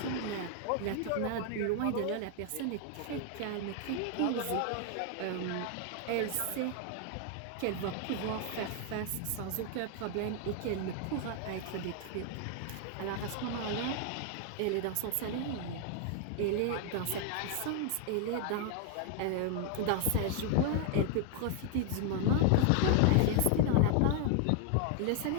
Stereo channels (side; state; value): both; different; correlation 0.00